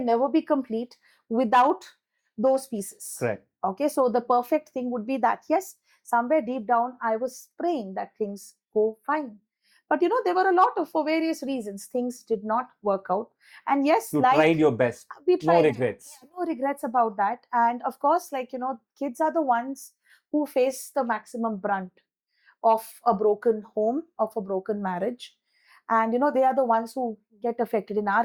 never be complete without those pieces. Correct. Okay, so the perfect thing would be that, yes, somewhere deep down, I was praying that things go fine. But there were a lot of, for various reasons, things did not work out. And yes, You like, tried your best. we No tried. regrets. Yeah, no regrets about that. And of course, like, kids are the ones who face the maximum brunt of a broken home, of a broken marriage. And they are the ones who get affected. In our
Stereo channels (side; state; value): both; identical; correlation 1.00